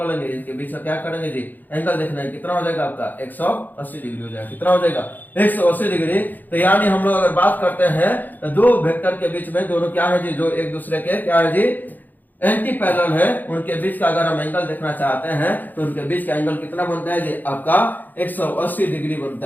लेंगे। इसके बीच में क्या करेंगे जी? एंगल देखना है कितना हो जाएगा आपका? 180 डिग्री हो जाएगा। कितना हो जाएगा? 180 डिग्री। तो यानी हम लोग अगर बात करते हैं तो दो वेक्टर के बीच में दोनों क्या है जी? जो एक दूसरे के क्या है जी? एंटी पैरेलल है, उनके बीच का अगर हम एंगल देखना चाहते हैं तो उनके बीच का एंगल कितना बनता है जी? आपका 180 डिग्री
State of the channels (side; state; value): right; late; 0.086 ms